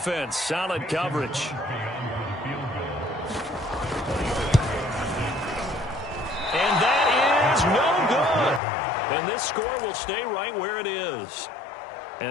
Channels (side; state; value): right; drops out; at 8.6 s